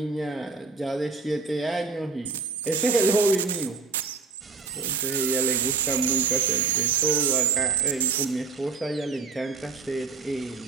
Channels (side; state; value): left; quieter; 4.8 dB